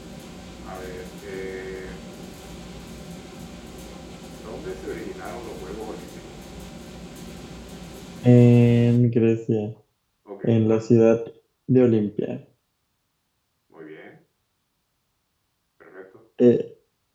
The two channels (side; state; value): both; identical; correlation 1.00